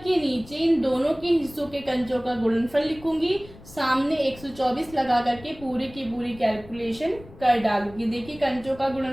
नीचे इन दोनों के हिस्सों के कंचों का गुणनफल लिखूंगी, सामने 124 लगा करके पूरी की पूरी कैलकुलेशन कर डालूंगी। देखिए कंचों का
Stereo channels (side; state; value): left; noise; rumble, 20 dB below the sound